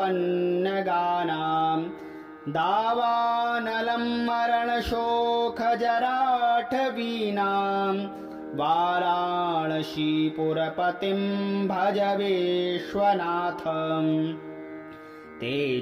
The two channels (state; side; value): identical; both; correlation 1.00